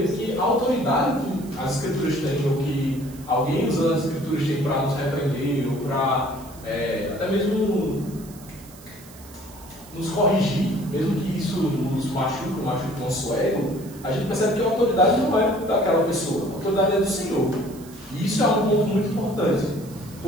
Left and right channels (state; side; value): noise; right; hiss, 21 dB below the sound